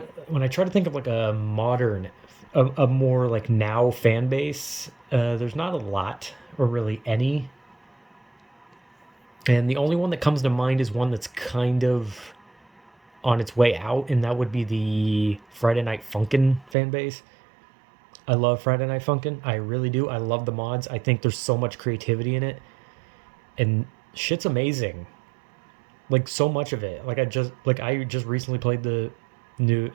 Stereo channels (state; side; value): drops out; left; at 16.8 s